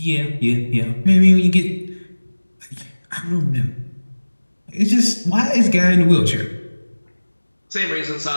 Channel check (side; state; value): both; inverted; correlation -1.00